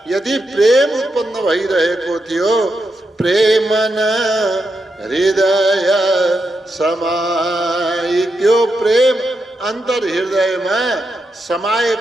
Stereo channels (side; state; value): both; normal; correlation 0.85